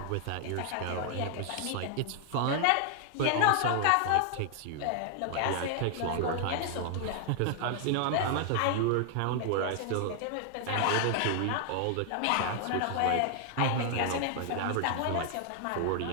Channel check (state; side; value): different; both; correlation 0.00